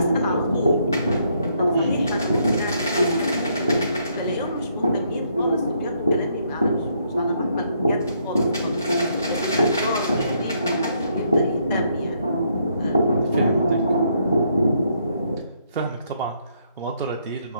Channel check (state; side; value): inverted; both; correlation -0.72